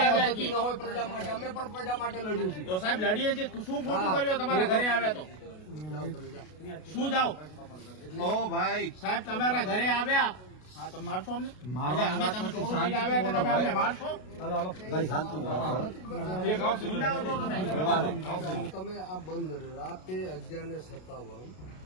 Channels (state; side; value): late; right; 32 ms